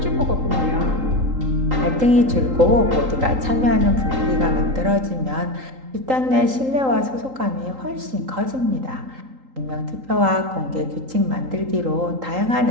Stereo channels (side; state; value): left; late; 3.8 ms